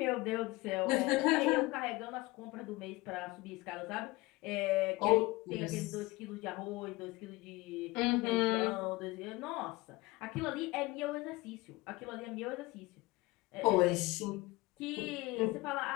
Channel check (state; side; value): quieter; right; 21.4 dB